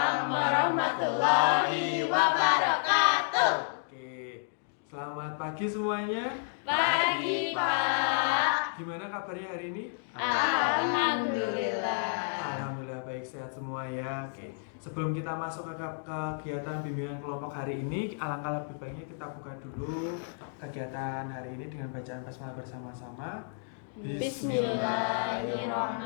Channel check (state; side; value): silent; right; digital silence